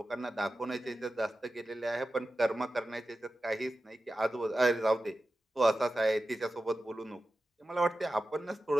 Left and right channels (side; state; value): both; normal; correlation 0.93